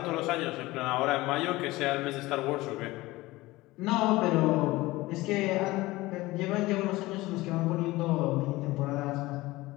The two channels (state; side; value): quieter; right; 19.5 dB